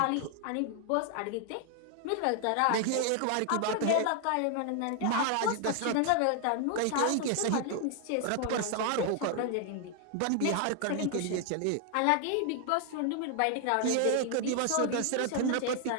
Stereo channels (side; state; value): both; different; correlation 0.00